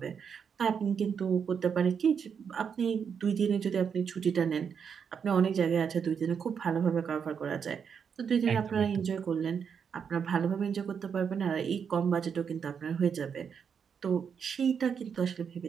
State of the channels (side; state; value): left; quieter; 6.9 dB